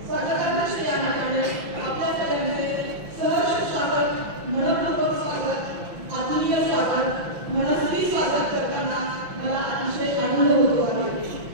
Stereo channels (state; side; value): late; left; 5.8 ms